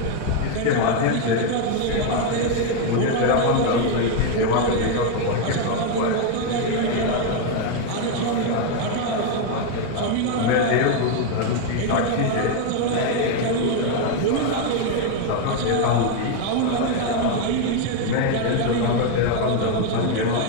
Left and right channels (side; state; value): both; different; correlation 0.01